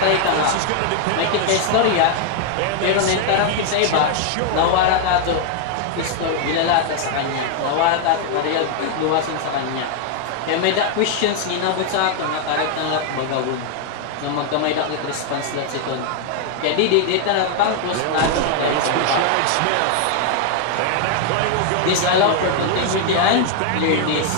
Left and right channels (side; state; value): both; different; correlation 0.00